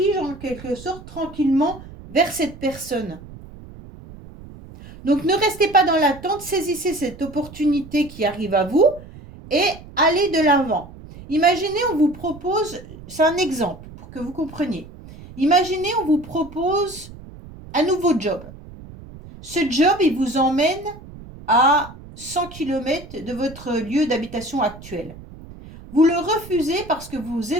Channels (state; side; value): noise; right; rumble, 17 dB below the sound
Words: en quelque sorte tranquillement vers cette personne. Donc, ne restez pas dans l'attente, saisissez cette opportunité qui arrive à vous et allez de l'avant. Imaginez, on vous propose, c'est un exemple pour que vous compreniez. Imaginez, on vous propose un nouveau job. Ce job, il vous emmène à 100 km de votre lieu d'habitation actuel. Vous le refusez parce que vous